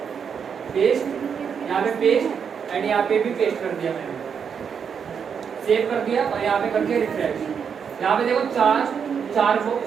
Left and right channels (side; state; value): left; quieter; 6.9 dB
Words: पेस्ट, यहाँ पे पेस्ट एंड यहाँ पे भी पेस्ट कर दिया मैंने, सेव कर दिया और यहाँ पे कर दिया रिफ्रेश। यहाँ पे देखो 4